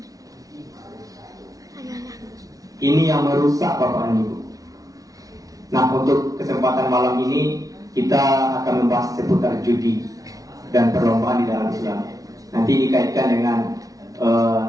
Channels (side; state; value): left; late; 0.17 ms